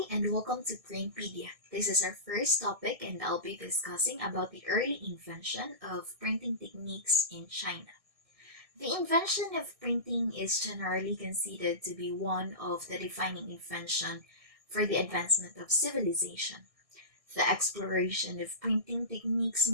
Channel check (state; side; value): late; left; 1.6 ms